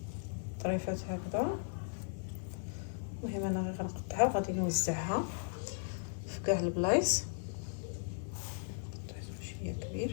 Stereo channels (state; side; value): silent; right; digital silence